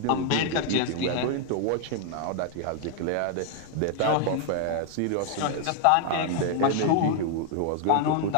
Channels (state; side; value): different; both; correlation 0.00